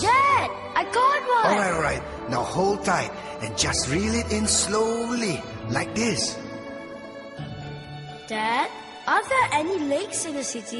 Dad, I got one! Alright. Now hold tight and just reel it in slowly, like this. Dad, are there any lakes in the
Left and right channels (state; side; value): identical; both; correlation 1.00